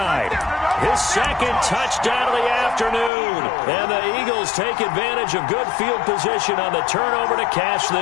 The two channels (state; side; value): drops out; right; at 3.1 s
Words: His 2nd touchdown of the afternoon. And the Eagles take advantage of good field position on the turnover to cash